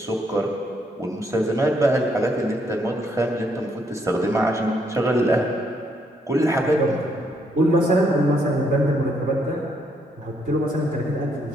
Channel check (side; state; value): both; normal; correlation 0.73